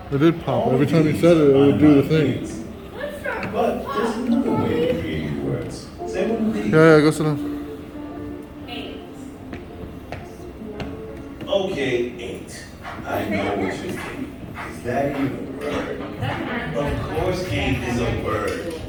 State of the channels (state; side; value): identical; both; correlation 1.00